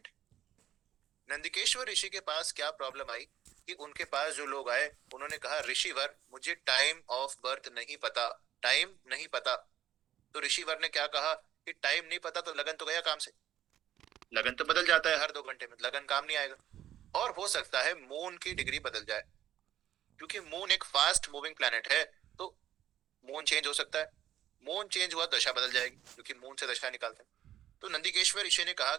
है। नंदिकेश्वर ऋषि के पास क्या प्रॉब्लम आई कि उनके पास जो लोग आए उन्होंने कहा ऋषिवर मुझे टाइम ऑफ बर्थ नहीं पता, टाइम नहीं पता। तो ऋषिवर ने क्या कहा कि टाइम नहीं पता तो लगन तो गया काम से, लगन तो बदल जाता है हर 2 घंटे में, लगन काम नहीं आएगा। और हो सकता है मून की डिग्री बदल जाए, क्योंकि मून एक फास्ट मूविंग प्लैनेट है, तो मून चेंज हो सकता है। मून चेंज हुआ दशा बदल जाएगी, क्योंकि मून से दशा निकालते हैं। तो नंदिकेश्वर ऋषि ने कहा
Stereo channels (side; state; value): left; quieter; 11.7 dB